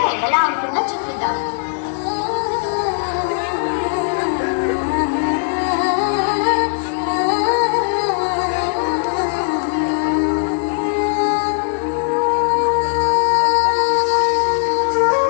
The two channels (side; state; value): right; silent; 65 dB below the other